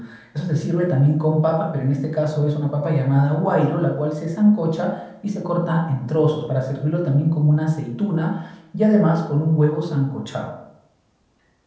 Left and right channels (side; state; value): both; identical; correlation 1.00